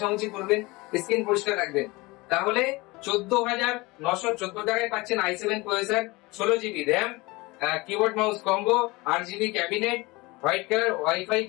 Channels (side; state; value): right; quieter; 23.1 dB